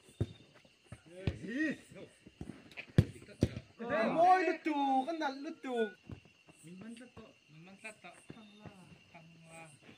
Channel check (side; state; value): both; identical; correlation 1.00